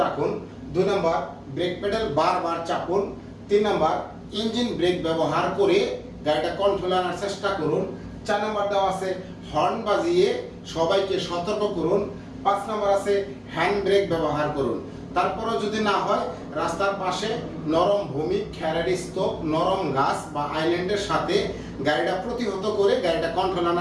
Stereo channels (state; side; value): identical; both; correlation 1.00